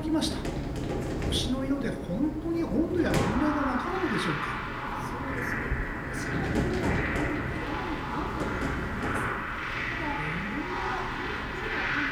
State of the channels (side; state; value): both; identical; correlation 1.00